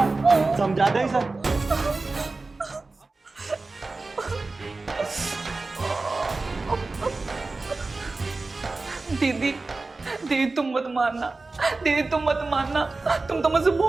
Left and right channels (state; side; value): quieter; left; 3.5 dB